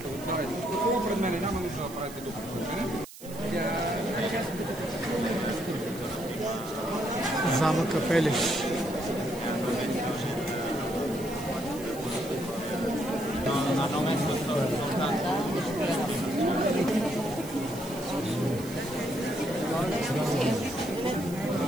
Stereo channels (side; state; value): right; noise; hiss, 17 dB below the sound